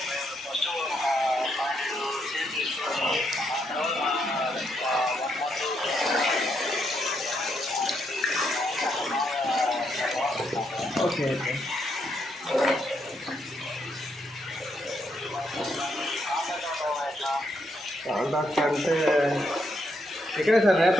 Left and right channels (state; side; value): normal; both; correlation 0.77